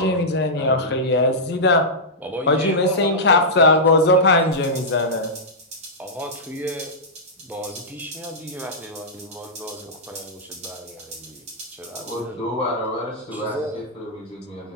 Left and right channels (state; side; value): normal; both; correlation -0.11